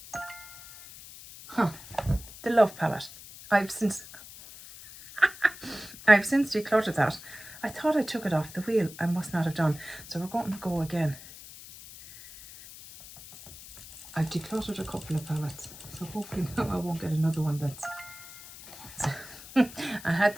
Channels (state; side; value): noise; left; hiss, 16 dB below the sound